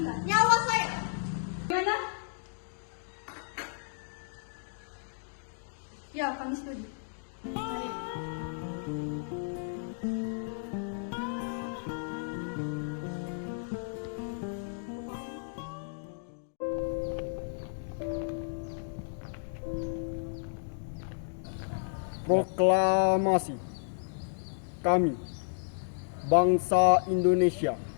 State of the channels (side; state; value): right; silent; digital silence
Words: Nyawa saya! Gimana? Ya, kami setuju. Mari. Proklamasi. Kami, bangsa Indonesia,